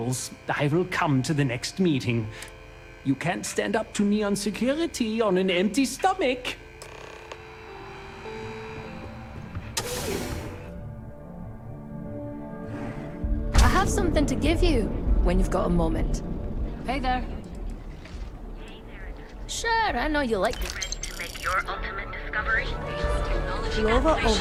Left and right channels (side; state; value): both; identical; correlation 1.00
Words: I will come to the next meeting. You can't stand up to Neon Security on an empty stomach. I have something to give you when you've got a moment. Hey there. Sure, I know you like it. Ready to make your ultimate discovery? Lova